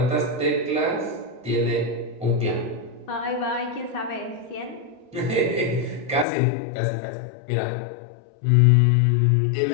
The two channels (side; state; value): right; drops out; at 6.2 s